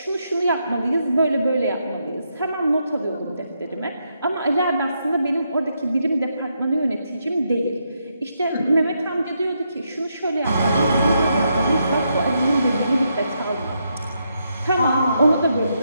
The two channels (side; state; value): both; inverted; correlation -0.80